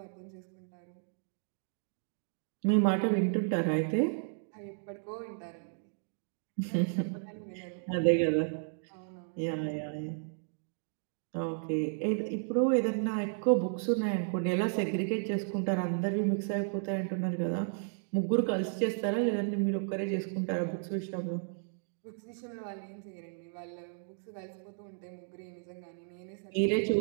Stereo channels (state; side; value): silent; left; digital silence